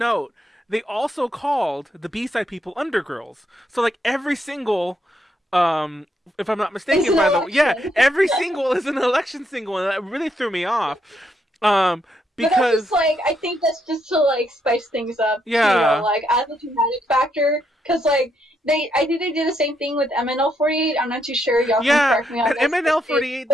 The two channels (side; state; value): both; normal; correlation 0.77